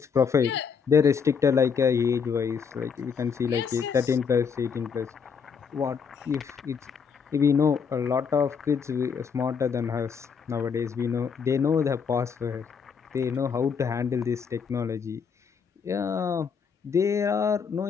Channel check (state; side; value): quieter; right; 6.3 dB